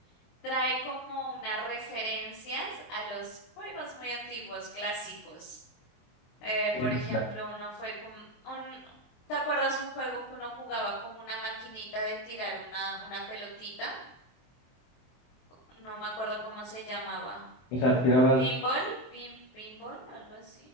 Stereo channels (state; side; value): late; right; 23 ms